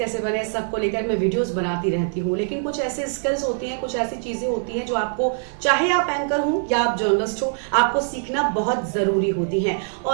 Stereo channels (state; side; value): silent; left; 58 dB below the other